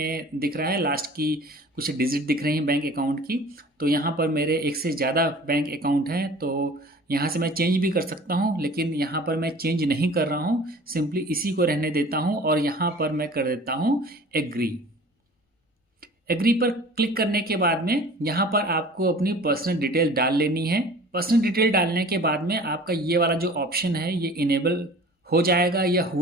दिख रहा है, लास्ट की कुछ डिजिट दिख रही हैं बैंक अकाउंट की। तो यहाँ पर मेरे एक से ज़्यादा बैंक अकाउंट हैं तो यहाँ से मैं चेंज भी कर सकता हूँ, लेकिन यहाँ पर मैं चेंज नहीं कर रहा हूँ, सिंपली इसी को रहने देता हूँ। और यहाँ पर मैं कर देता हूँ एग्री। एग्री पर क्लिक करने के बाद में यहाँ पर आपको अपनी पर्सनल डिटेल डाल लेनी है। पर्सनल डिटेल डालने के बाद में आपका ये वाला जो ऑप्शन है ये इनेबल हो जाएगा या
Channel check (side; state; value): both; normal; correlation 0.45